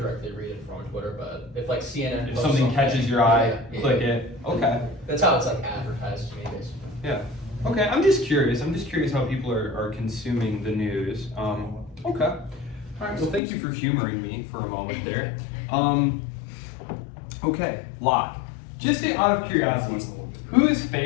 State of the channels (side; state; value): right; drops out; at 13.4 s